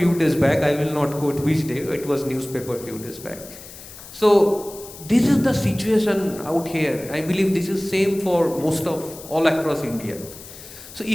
days back. I will not quote which day. It was newspaper few days back. So this is the situation out here. I believe this is same for most of all across India. So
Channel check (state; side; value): noise; left; hiss, 16 dB below the sound